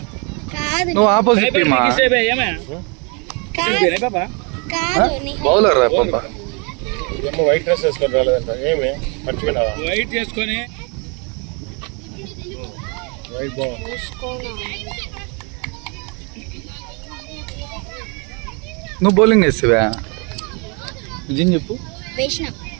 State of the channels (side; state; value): left; quieter; 33.1 dB